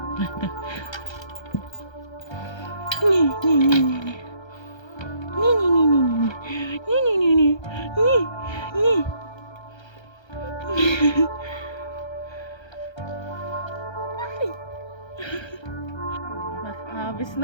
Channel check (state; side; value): late; right; 1.3 ms